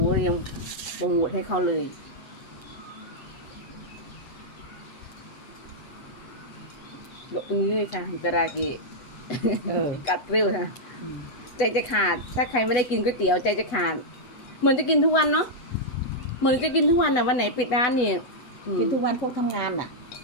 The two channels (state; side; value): late; right; 8.1 ms